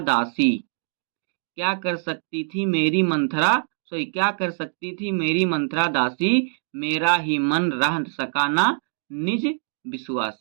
दासी, क्या कर सकती थी मेरी मंथरा, सॉरी क्या कर सकती थी मेरी मंथरा दासी, मेरा ही मन रह सका ना निज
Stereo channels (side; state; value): left; silent; 63 dB below the other